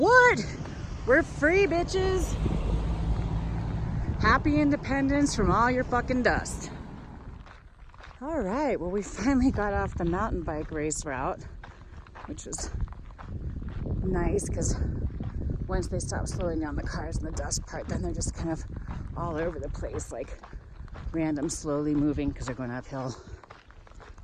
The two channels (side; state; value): both; identical; correlation 1.00